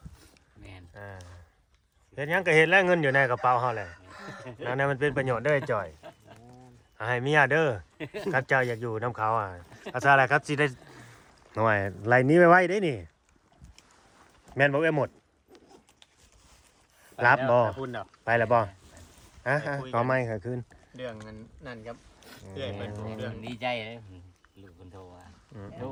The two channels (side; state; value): both; identical; correlation 1.00